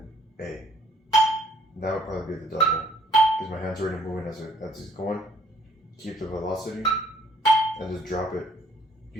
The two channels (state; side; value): normal; both; correlation 0.62